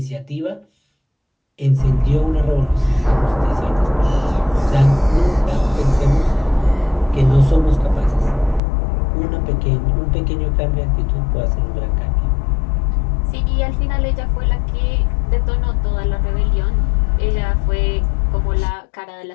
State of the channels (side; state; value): right; drops out; at 8.6 s